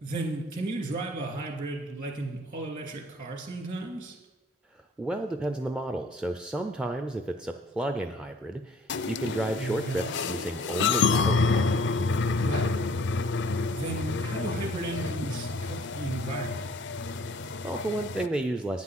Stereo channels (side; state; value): both; normal; correlation 0.56